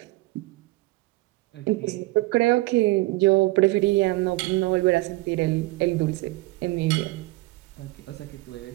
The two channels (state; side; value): quieter; left; 21.0 dB